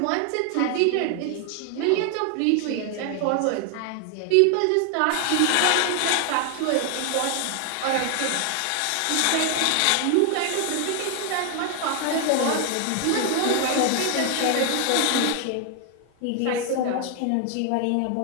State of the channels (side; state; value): both; different; correlation 0.00